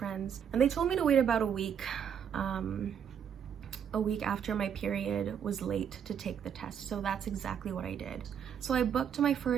and they told me to wait about a week after my period was late to take the test. So that's exactly what I did. So I booked my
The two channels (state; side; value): quieter; left; 8.1 dB